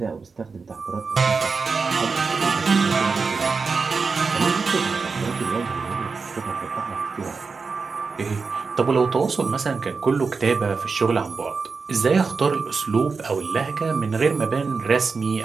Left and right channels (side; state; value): left; quieter; 4.8 dB